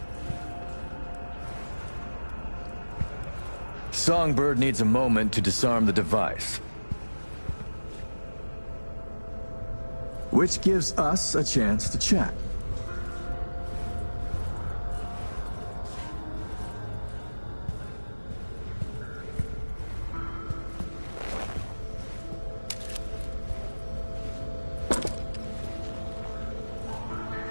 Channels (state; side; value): inverted; both; correlation -1.00